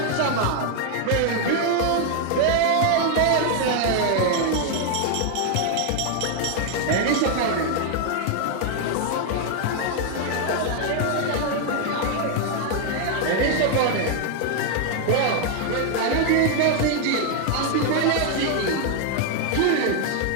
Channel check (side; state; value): both; different; correlation 0.00